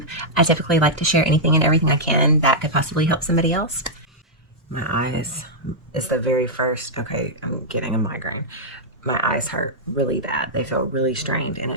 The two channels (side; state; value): both; normal; correlation -0.08